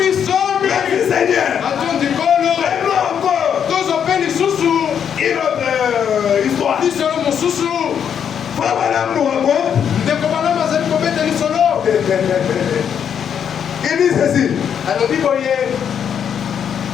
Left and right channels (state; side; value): quieter; right; 8.2 dB